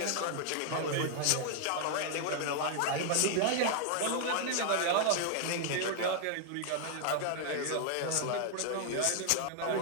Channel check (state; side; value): different; both; correlation 0.00